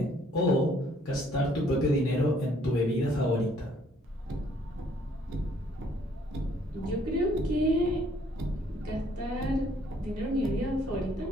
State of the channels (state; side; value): normal; both; correlation 0.63